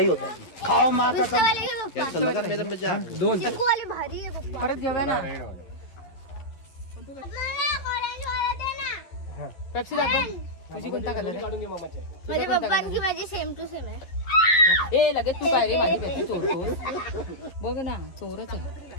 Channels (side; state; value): right; late; 11 ms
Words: होता है. खाओ माँ का सब लगा मेरा मजाक. 2 परत घेऊया ना. पेप्सी दाखव. तुझी कोणता कलर आहे? माझी सेम टू सेम आहे. ए लगेच तू काय रे माझी पेप्सी चोरतोस? बघ ना चोरच आहे.